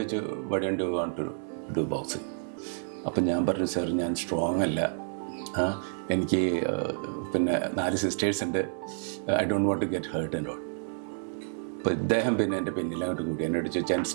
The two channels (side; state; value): left; silent; 58 dB below the other